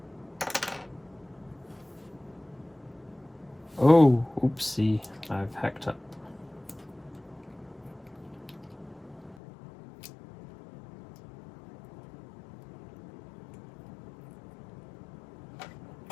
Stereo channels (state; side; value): drops out; right; at 9.3 s